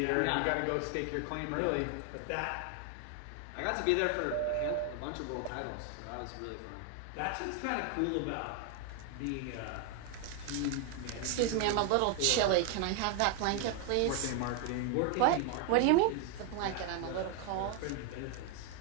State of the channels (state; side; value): different; both; correlation 0.00